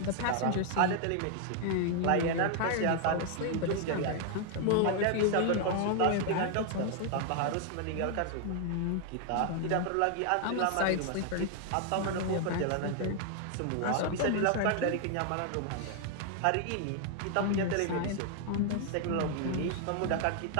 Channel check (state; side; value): different; both; correlation 0.00